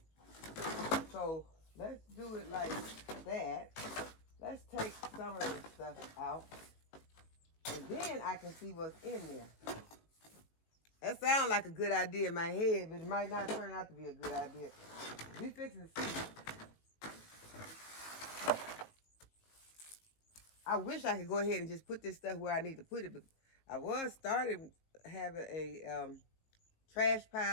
So let's do it like that. Let's take some of this stuff out, and then I can see what's in there. That sounds like a good idea in my head, but it might not turn out to be a good idea. We fixing to see. I wish I could go ahead and just put this stuff where I need to put it, but I was started having a trash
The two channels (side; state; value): right; late; 19 ms